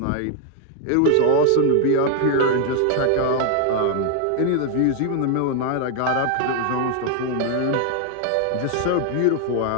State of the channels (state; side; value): different; both; correlation 0.00